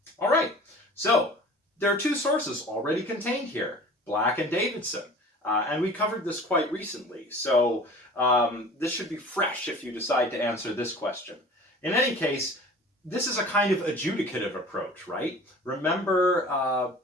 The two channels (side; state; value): both; normal; correlation 0.43